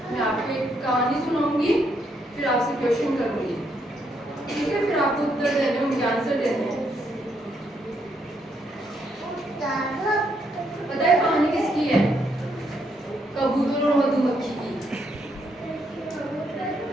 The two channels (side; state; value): both; normal; correlation 0.75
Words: मैं आपको एक कहानी सुनाऊंगी, फिर आपसे क्वेश्चन करूंगी, ठीक है? फिर आपको उत्तर देने होंगे, आंसर देने हैं। पता है कहानी किसकी है? कबूतर और मधुमक्खी की।